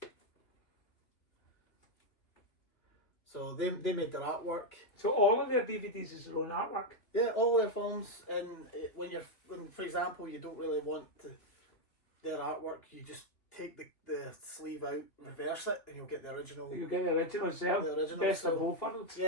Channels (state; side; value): late; right; 2.6 ms